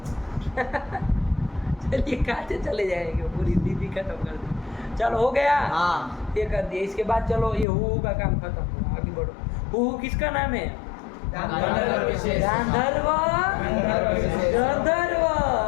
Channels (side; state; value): right; drops out; at 7.7 s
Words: चलिए खाते चले जाएंगे, पूरी दीदी खत्म कर दी। चलो हो गया, हाँ ये कर दिया। इसके बाद चलो ये हु का काम खत्म हुआ, आगे बढ़ो। हु किसका नाम है? गांधर्व विशेष। गांधर्व, गंधर्व,